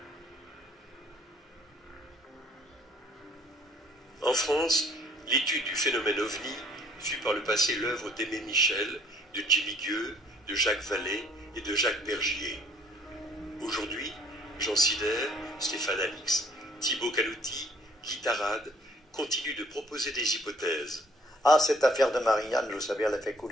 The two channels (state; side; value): normal; both; correlation 0.60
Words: En France, l'étude du phénomène OVNI fut par le passé l'œuvre d'Aimé Michel, de Jimmy Gueux, de Jacques Vallée et de Jacques Bergier. Aujourd'hui, Jean Sider, Stéphane Alix, Thibaut Calouty, Guy Tarade continuent de proposer des hypothèses. Ah, cette affaire de Marianne, vous savez, elle a fait